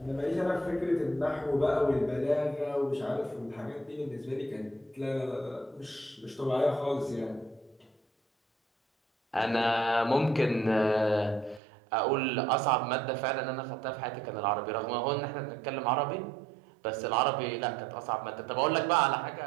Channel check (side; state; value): left; drops out; at 11.6 s